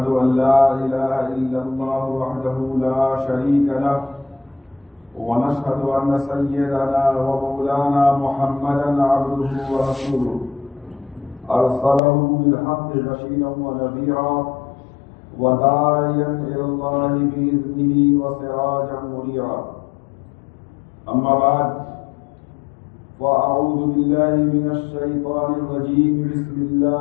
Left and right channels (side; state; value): right; drops out; at 12.0 s